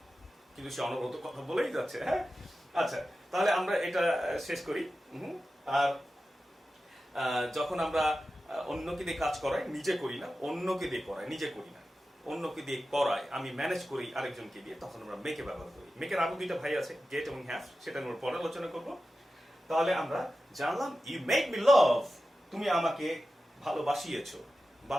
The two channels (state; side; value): normal; both; correlation 0.93